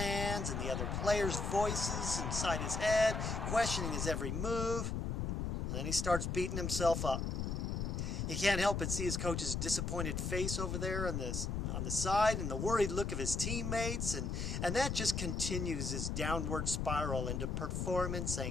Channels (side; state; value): left; noise; rumble, 1 dB below the sound